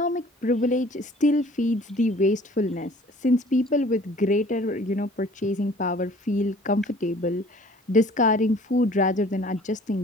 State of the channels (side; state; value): both; normal; correlation 0.51